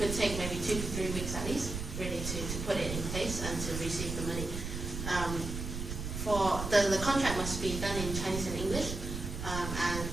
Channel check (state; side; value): noise; right; rumble, 5 dB below the sound